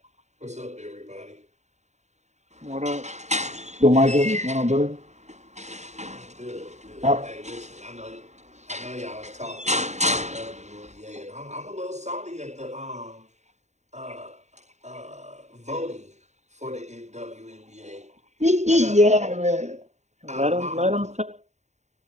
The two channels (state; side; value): late; left; 0.33 ms